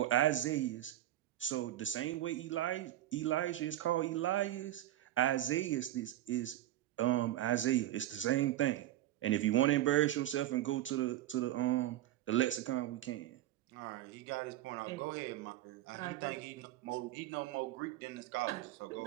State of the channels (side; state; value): left; quieter; 13.7 dB